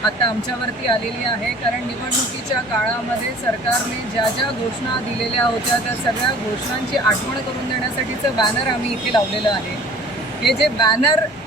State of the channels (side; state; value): both; normal; correlation 0.48